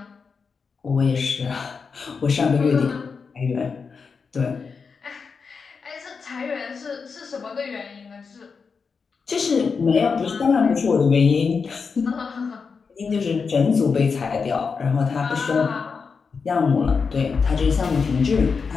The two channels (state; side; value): quieter; right; 5.3 dB